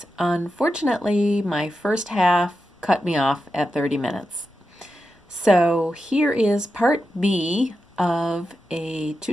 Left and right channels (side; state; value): both; normal; correlation 0.89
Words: Unfortunately, my first half cut me off at 30 minutes. So here is part B of a